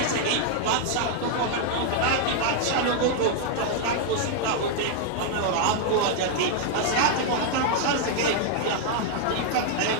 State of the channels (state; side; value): different; both; correlation 0.00